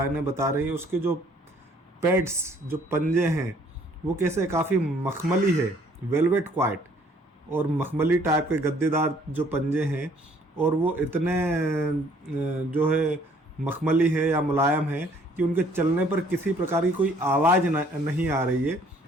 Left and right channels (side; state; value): both; normal; correlation 0.61